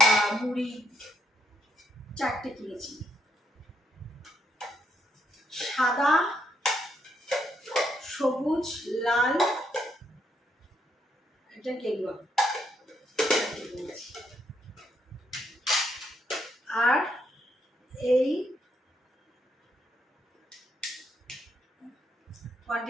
মুড়ি 4টে কিনেছি, সাদা, সবুজ, লাল, এটা গেরুয়া। আর এই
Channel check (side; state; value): both; normal; correlation 0.75